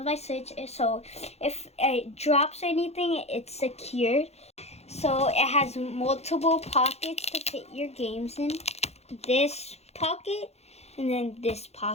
my Switch, so if it drops anything, it's secured. So it has multiple pockets to fit your games in. This pocket and then this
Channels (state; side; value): late; right; 0.31 ms